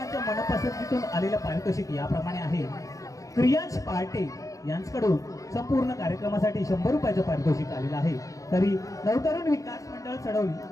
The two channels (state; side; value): late; right; 0.16 ms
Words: मनपसंतीतून आलेलं पारितोषिक याप्रमाणे आहे. क्रियांश पहाटे यांच्याकडून संपूर्ण कार्यक्रमासाठी 100 रुपयाचं पारितोषिक आलेलं आहे. तरी नवतरुण विकास